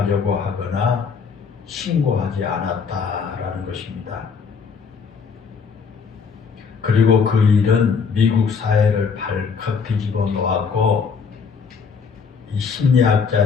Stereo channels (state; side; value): quieter; right; 5.7 dB